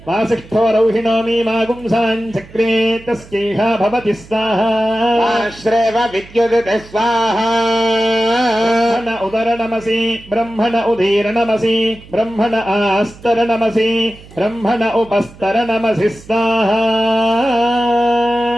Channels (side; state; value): right; noise; hum, 21 dB below the sound